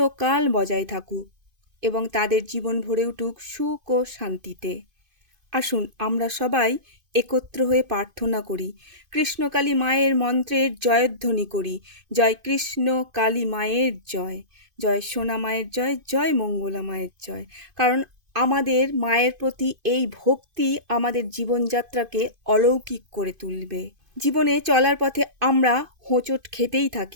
বজায় থাকুক এবং তাদের জীবন ভরে উঠুক সুখ ও শান্তিতে। আসুন আমরা সবাই একত্র হয়ে প্রার্থনা করি, কৃষ্ণকালী মায়ের মন্ত্রের জয়ধ্বনি করি। জয় কৃষ্ণ কালী মায়ের জয়, জয় সোনা মায়ের জয়, জয় মঙ্গলা মায়ের জয়। কারণ আমাদের মায়ের প্রতি এই ভক্তি আমাদের জীবনযাত্রাকে অলৌকিক করে তুলবে। জীবনে চলার পথে আমরা হোঁচট খেতেই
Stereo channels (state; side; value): late; left; 2.5 ms